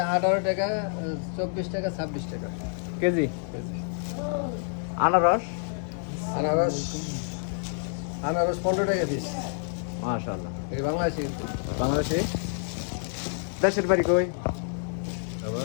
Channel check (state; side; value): silent; right; 58 dB below the other